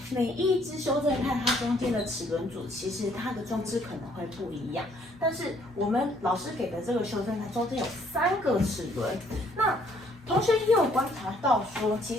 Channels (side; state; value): both; normal; correlation 0.64